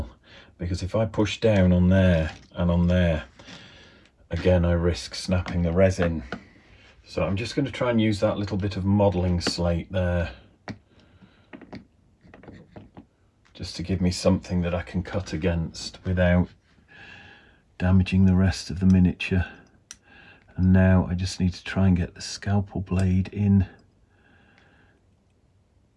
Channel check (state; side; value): identical; both; correlation 1.00